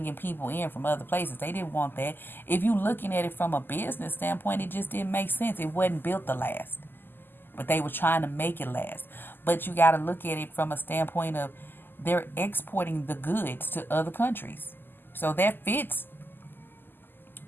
people in from other places. They didn't want that. If you looking at it from a business standpoint, it just didn't make sense. It wasn't built to last. But they were trying to make it last. But you got to look at it from a standpoint of they're exporting the goods to other countries. So that fits.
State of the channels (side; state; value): right; late; 0.094 ms